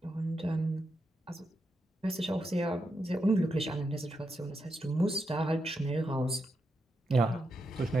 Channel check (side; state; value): both; normal; correlation 0.85